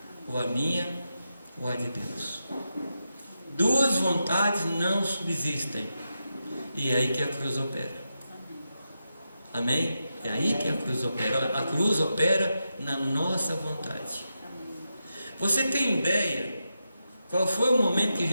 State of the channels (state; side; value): inverted; both; correlation -0.88